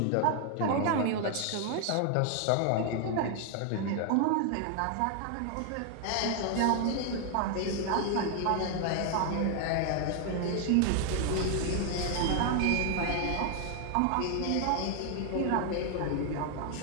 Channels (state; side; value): different; both; correlation 0.00